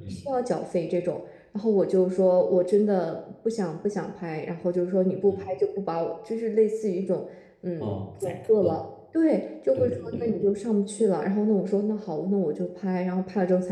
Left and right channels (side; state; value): both; identical; correlation 1.00